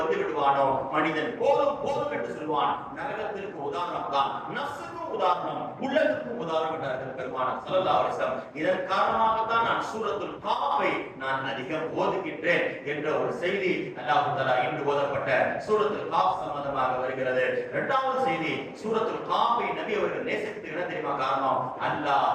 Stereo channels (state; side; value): identical; both; correlation 1.00